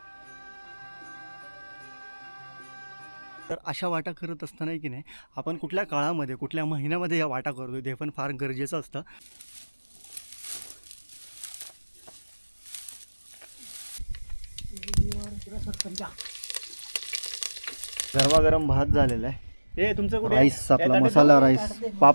तर अशा वाटा करत असताना की नाही आपण कुठल्या काळामध्ये कुठल्या महिन्यामध्ये या वाटा करतो ते पण फार गरजेचं असतं. गरमागरम भात झालेला आहे. हे तुमचं कुठे राईस, आपला मसाला राईस,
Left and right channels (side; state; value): both; inverted; correlation -1.00